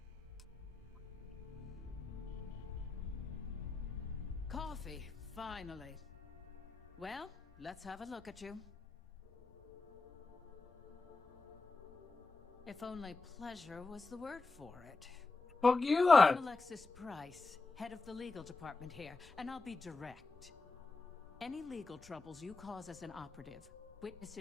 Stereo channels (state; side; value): quieter; right; 3.7 dB